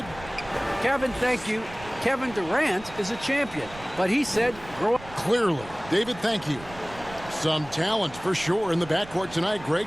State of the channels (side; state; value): right; noise; rumble, 17 dB below the sound